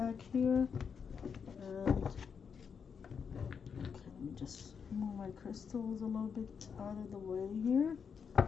here, and okay, let me just move my crystals a little bit out of the way here,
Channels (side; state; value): right; quieter; 6.5 dB